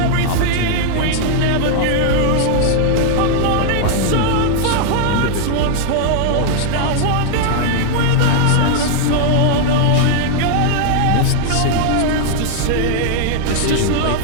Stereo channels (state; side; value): different; both; correlation 0.00